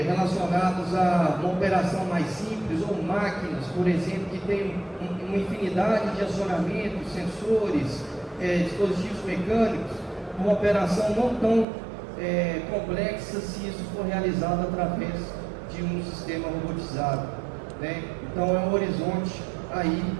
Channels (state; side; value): drops out; left; at 11.7 s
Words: relacionados a uma operação mais simples, ou máquinas, por exemplo, que tem uma infinidade de acionamentos, sensores, dispositivos mecânicos, uma operação não tão complexa se isso for realizado através de um sistema robotizado, né? Então é um horizonte aí